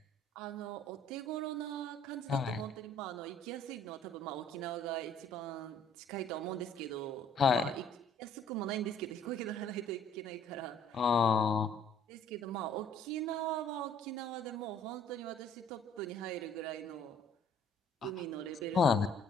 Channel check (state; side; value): normal; both; correlation 0.57